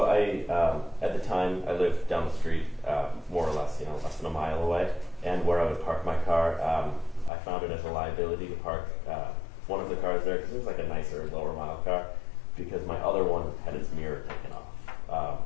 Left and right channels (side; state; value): right; drops out; at 7.3 s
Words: at the time, I lived down the street, more or less, less than a mile away, and where I would park my car, I found it as a liability to park one of the cars there because it was like a nicer, lower mile car, because my other one had its mirror taken off